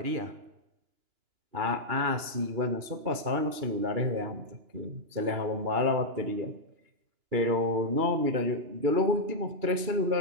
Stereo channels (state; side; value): late; left; 2.9 ms